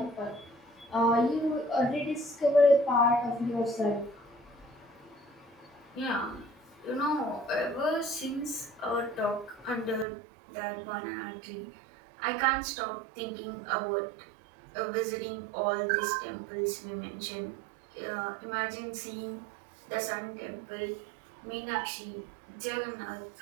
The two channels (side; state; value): left; drops out; at 10.1 s